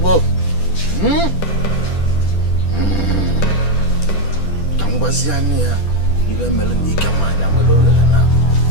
Tambaziania, ibe melani kamanya mwelolele na.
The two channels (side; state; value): right; late; 10 ms